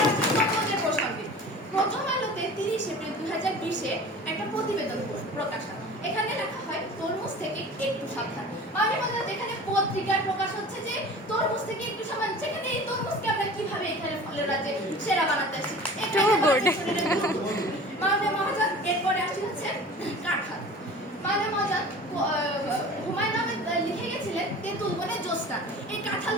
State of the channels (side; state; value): both; normal; correlation 0.40